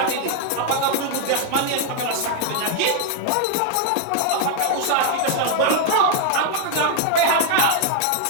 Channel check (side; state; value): both; different; correlation 0.00